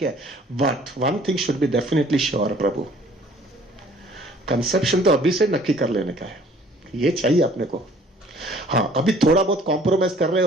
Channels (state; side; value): normal; both; correlation 0.55